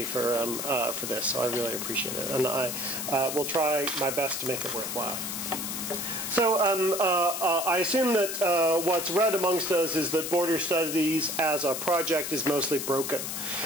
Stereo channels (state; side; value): noise; left; hiss, 4 dB below the sound